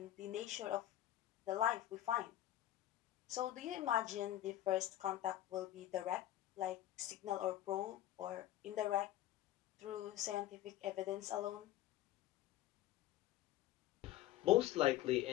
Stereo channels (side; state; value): right; quieter; 13.8 dB